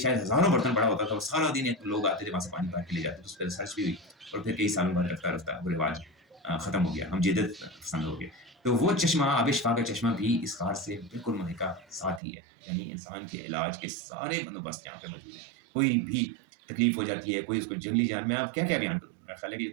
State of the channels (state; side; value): drops out; left; at 12.2 s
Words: ہزاروں برتن بڑا ہوتا تھا، اور سارا دن لوگ آتے تھے وہاں سے پانی بھر کے لے جاتے تھے۔ اس پہ ریسرچ بھی ہوئی اور پھر کئی سالوں بعد رفتہ رفتہ وہ رواج ختم ہو گیا، ہم جدت پسند ہو گئے۔ تو وہ چشمہ، آب شفا کا چشمہ بھی اس کار سے بالکل ملحقہ ساتھ ہی ہے، یعنی انسان کے علاج کے سارے بندوبست یہاں پہ موجود ہیں۔ کوئی بھی تکلیف ہو جاتی ہے، کوئی اس کو جنگلی جان میں آپ کیا کیا بیان کروں، میرا خیال ہے کہ یہ